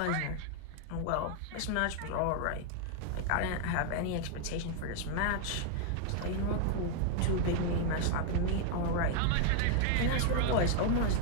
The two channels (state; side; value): different; both; correlation 0.00